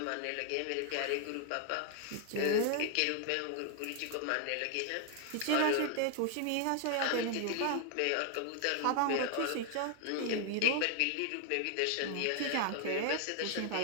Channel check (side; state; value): both; different; correlation 0.00